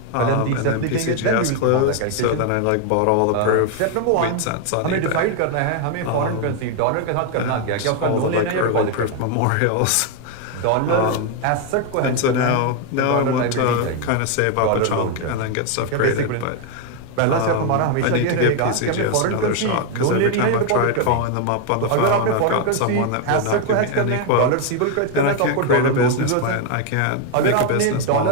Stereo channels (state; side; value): different; both; correlation 0.01